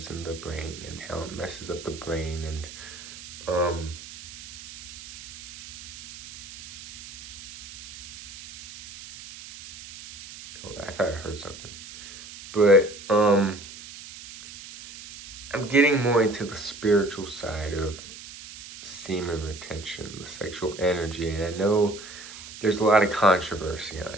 in the brain and how it messes up the brain, and thought I heard something. But I'm getting more into the spiritual side of semen retention, the sexual energy, and I know there's a lot of controversy on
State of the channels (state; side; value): noise; right; hiss, 15 dB below the sound